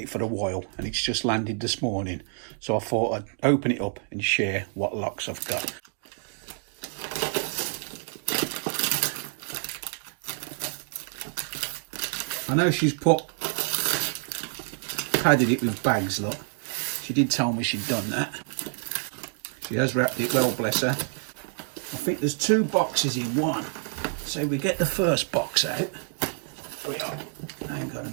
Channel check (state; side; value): silent; left; 59 dB below the other